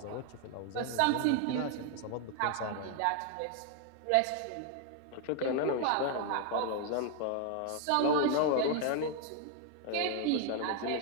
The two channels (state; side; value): different; both; correlation 0.00